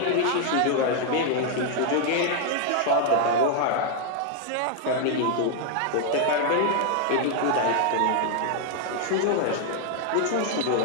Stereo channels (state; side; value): different; both; correlation 0.00